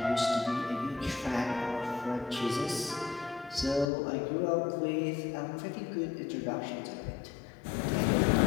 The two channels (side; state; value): right; drops out; at 3.9 s